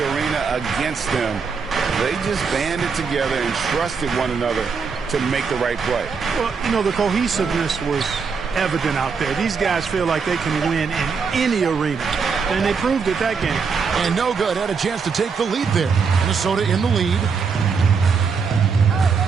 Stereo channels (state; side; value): quieter; left; 5.5 dB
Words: arena against them, they just banded together and trusted one another to make the right play. Well, you know, the cohesiveness was evident out there. These guys feel like they can win in any arena, and they proved it that game. And no good. Had a chance to take the lead there. Minnesota in the lead.